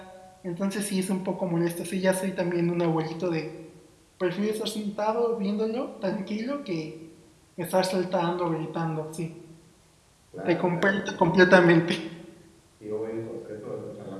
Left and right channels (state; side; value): identical; both; correlation 1.00